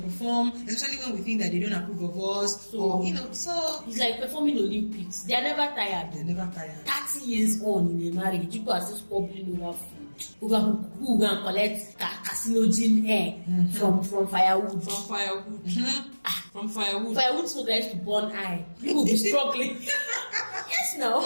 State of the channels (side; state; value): both; inverted; correlation -1.00